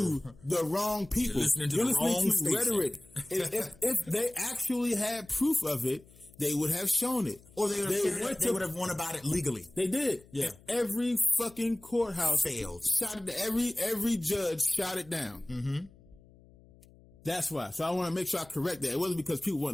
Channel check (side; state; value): left; noise; hum, 25 dB below the sound